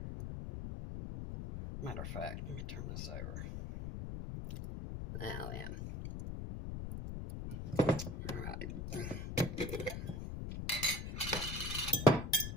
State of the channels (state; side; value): noise; left; rumble, 5 dB below the sound